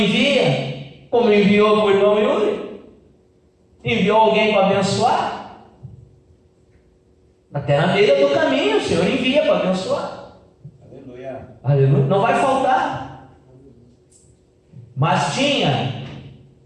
como enviou para o irmão Yuri, enviou alguém para abençoar. Até na beira do caminho o Senhor envia para abençoar. Aleluia. Aleluia. Não vai faltar. Mas tinha,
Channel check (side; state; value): both; identical; correlation 1.00